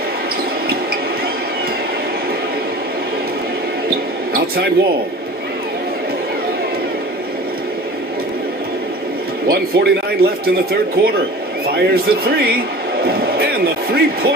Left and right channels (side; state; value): both; normal; correlation 0.39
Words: Outside Wall. 1:49 left in the third quarter. Fires the 3. And the